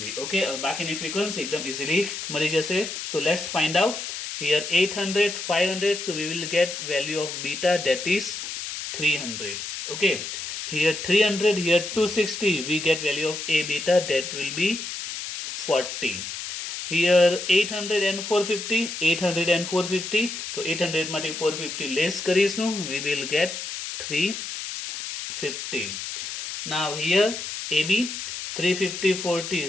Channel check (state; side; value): noise; left; hiss, 6 dB below the sound